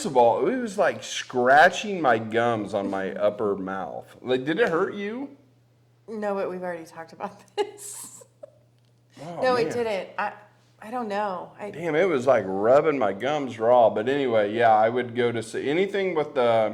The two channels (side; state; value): both; identical; correlation 1.00